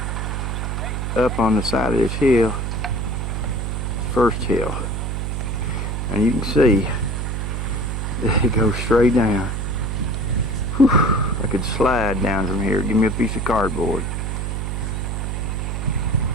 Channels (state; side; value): noise; right; hum, 2 dB below the sound